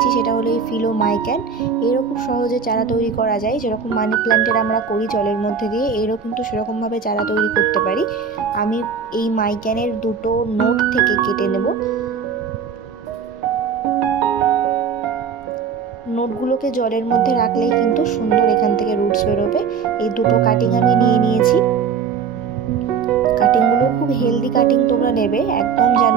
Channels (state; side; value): quieter; left; 6.3 dB